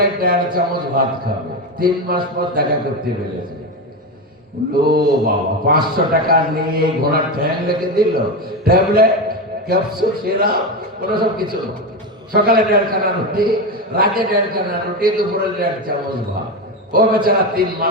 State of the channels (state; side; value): normal; both; correlation 0.16